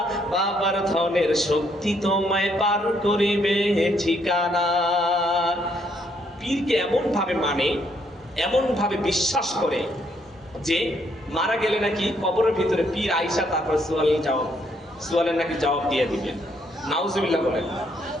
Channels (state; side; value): normal; both; correlation 0.71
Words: বাবার ধনের শক্তি তোমায় পার করিবে ঠিকানা। পীরকে এমন ভাবে মানে, এমন ভাবে বিশ্বাস করে যে মারা গেলে নাকি কবরের ভিতরে পীর আইসা তারপর সোয়ালের নাকি জবাব দিয়ে দিবেন। নাউজুবিল্লাহ বলেন।